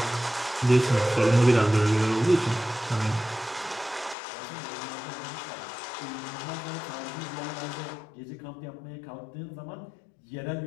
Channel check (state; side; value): drops out; right; at 4.2 s